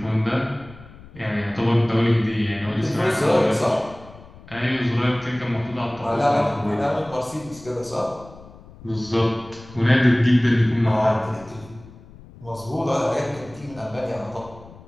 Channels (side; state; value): left; noise; rumble, 20 dB below the sound